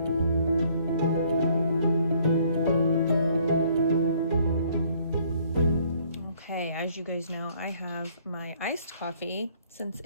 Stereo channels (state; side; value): inverted; both; correlation -0.62